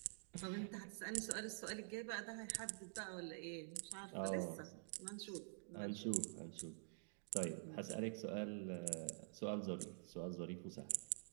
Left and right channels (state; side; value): silent; left; digital silence